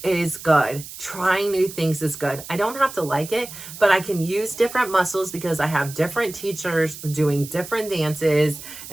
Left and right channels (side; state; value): right; noise; hiss, 13 dB below the sound